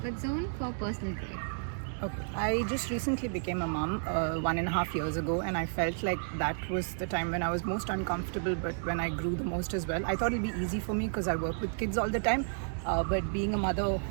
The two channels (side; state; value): left; silent; 56 dB below the other